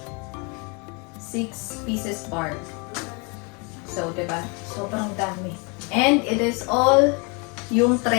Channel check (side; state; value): right; quieter; 32.2 dB